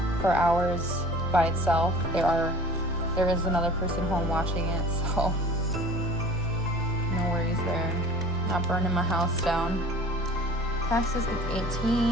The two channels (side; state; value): both; normal; correlation 0.44